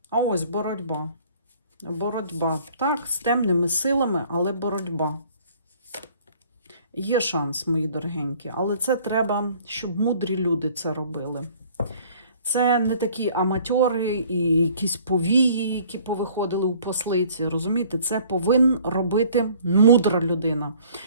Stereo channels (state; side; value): inverted; both; correlation -0.55